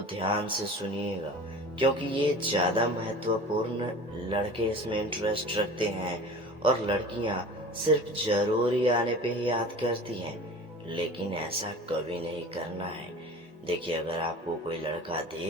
ध्यान से सुनिएगा, क्योंकि ये ज्यादा महत्वपूर्ण। लड़के इसमें इंटरेस्ट रखते हैं और लड़कियां सिर्फ जरूरी आने पे ही याद करती हैं, लेकिन ऐसा कभी नहीं करना है। देखिए, अगर आपको कोई लड़का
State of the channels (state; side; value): normal; both; correlation 0.39